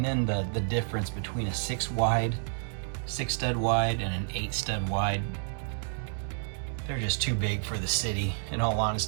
then the difference between a 6-wide, 6-stud wide, and an 8-stud wide, they're just too big for the city, in all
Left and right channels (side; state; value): left; silent; digital silence